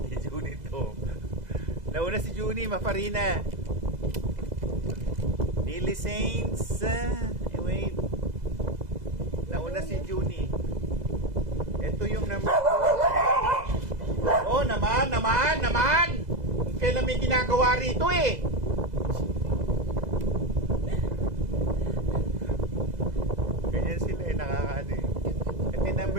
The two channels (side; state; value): left; late; 2.0 ms